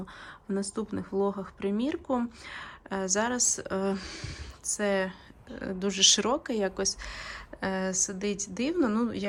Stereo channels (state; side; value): identical; both; correlation 1.00